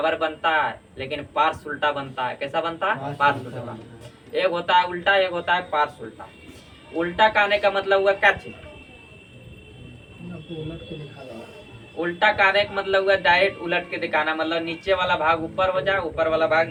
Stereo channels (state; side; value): identical; both; correlation 1.00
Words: बनता है लेकिन पार्श्व उल्टा बनता है। कैसा बनता है? पार्श्व उल्टा। एक होता है उल्टा, एक होता है पार्श्व उल्टा। उल्टा कहने का मतलब हुआ क्या चीज? उल्टा कहने का मतलब हुआ डायरेक्ट उलट के दिखाना, मतलब नीचे वाला भाग ऊपर हो जाए, ऊपर वाला भाग